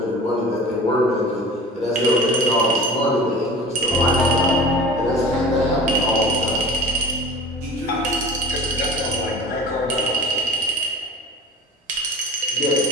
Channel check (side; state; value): both; normal; correlation 0.40